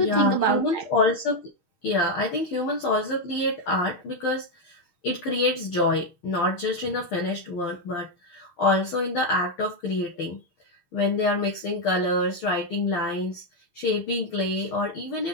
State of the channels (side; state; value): right; late; 6.5 ms